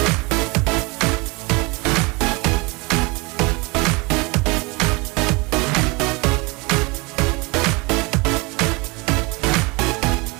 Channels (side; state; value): left; quieter; 26.7 dB